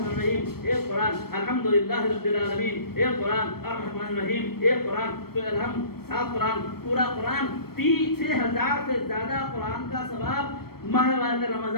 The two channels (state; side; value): late; right; 0.94 ms